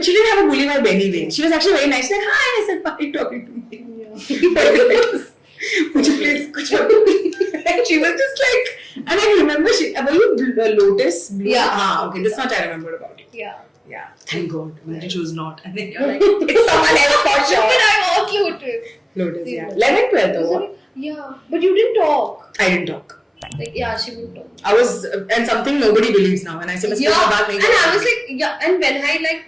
she didn't have a bully vibe anyway. She was actually very nice. Like, hi, I said, why are you talking to me? Yeah. Would you please, and she was just like, and I remember were you Lotus? Blue? Yeah. Okay, this much I remembered about it. Yeah. Thank God. Imagine she was not. And then you're like, it's someone else for sure. But I was Lotus. Lotus, yeah. 11th, 12th, though. Yeah. But you didn't talk. I didn't talk. Like, yeah, she would talk. I was, and something nobody believes now. And I said, And I was like, yeah. And when I like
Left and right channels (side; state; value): both; identical; correlation 1.00